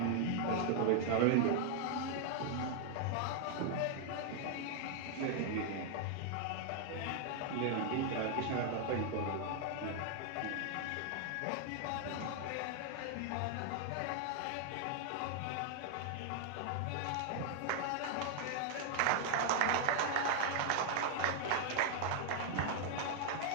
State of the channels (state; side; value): different; both; correlation 0.00